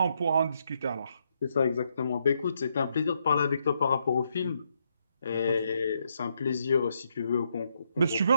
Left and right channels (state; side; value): inverted; both; correlation -0.78